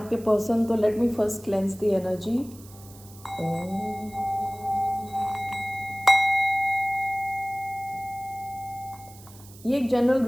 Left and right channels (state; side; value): noise; right; hiss, 21 dB below the sound